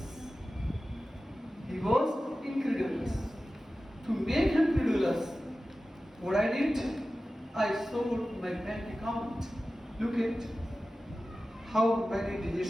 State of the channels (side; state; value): both; normal; correlation 0.95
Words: He was incredulous. To make him credulous, what I did, I showed my bank account. Look at how many